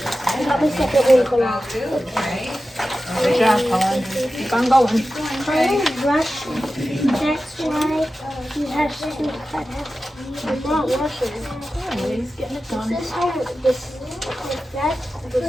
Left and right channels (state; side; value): normal; both; correlation 0.93